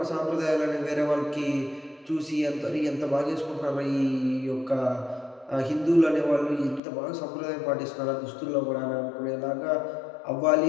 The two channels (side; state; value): right; drops out; at 6.8 s